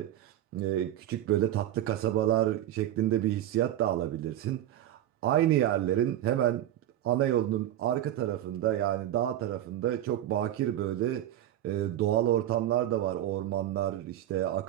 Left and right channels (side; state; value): left; quieter; 12.5 dB